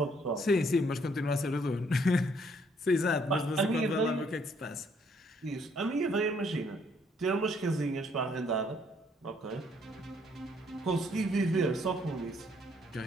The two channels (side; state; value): both; normal; correlation 0.67